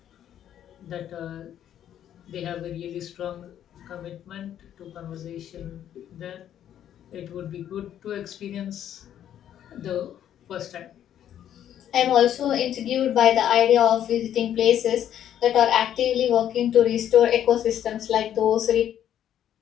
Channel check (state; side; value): quieter; right; 10.5 dB